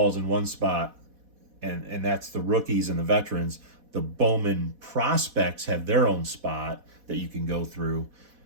in one spot, and that's the rookies and the veterans. The Bowman prospects have their own spot that you can go through,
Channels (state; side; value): late; left; 4.1 ms